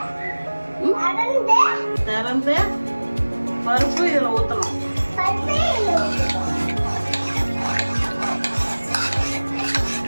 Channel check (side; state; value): both; inverted; correlation -1.00